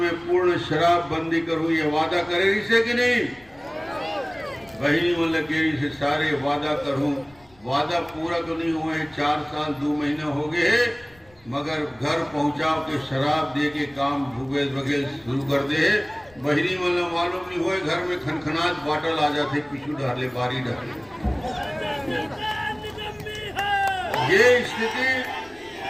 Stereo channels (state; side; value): noise; left; rumble, 28 dB below the sound